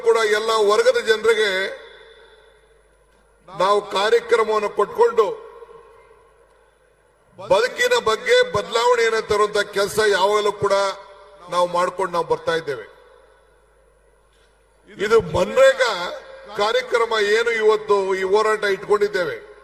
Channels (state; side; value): identical; both; correlation 1.00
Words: ಕೂಡ ಎಲ್ಲ ವರ್ಗದ ಜನರಿಗೆ ನಾವು ಕಾರ್ಯಕ್ರಮವನ್ನು ಕೊಟ್ಕೊಂಡು ಬದುಕಿನ ಬಗ್ಗೆ ಬದಲಾವಣೆಯನ್ನು ತರುವಂತ ಕೆಲಸ ಯಾವಾಗಲೂ ಕೂಡ ನಾವು ಮಾಡ್ಕೊಂಡು ಬರ್ತಾ ಇದ್ದೇವೆ. ಇದು ಮನ್ರೇಗಾ ಕಾರ್ಯಕ್ರಮ ಏನು ಇವತ್ತು ಈ ಹೋರಾಟ ಇಟ್ಕೊಂಡಿದ್ದೇವೆ